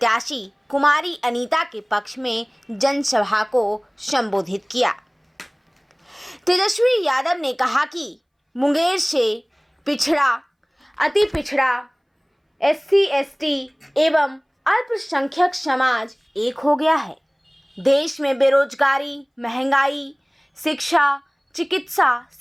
कुमारी अनीता के पक्ष में जनसभा को संबोधित किया। तेजस्वी यादव ने कहा कि मुंगेर से पिछड़ा, अति पिछड़ा, SC ST एवं अल्पसंख्यक समाज एक हो गया है। देश में बेरोजगारी, महंगाई, शिक्षा, चिकित्सा,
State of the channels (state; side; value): identical; both; correlation 1.00